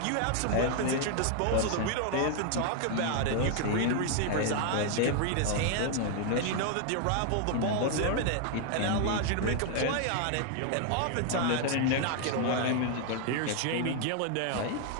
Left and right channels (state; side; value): different; both; correlation 0.00